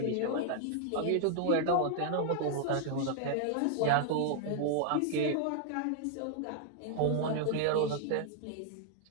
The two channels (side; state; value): both; different; correlation 0.00